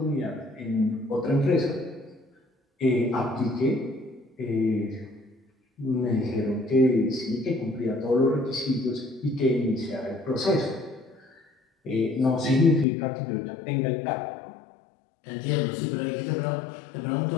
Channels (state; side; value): drops out; right; at 12.9 s